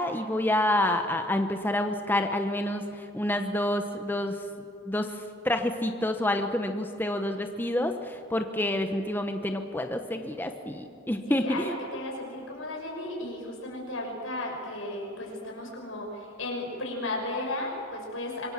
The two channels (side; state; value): both; normal; correlation 0.60